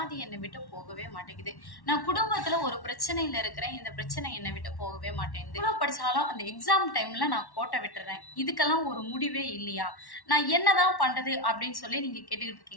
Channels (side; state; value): right; late; 1.1 ms